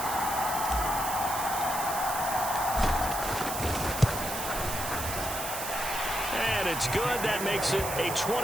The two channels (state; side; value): noise; right; hiss, 5 dB below the sound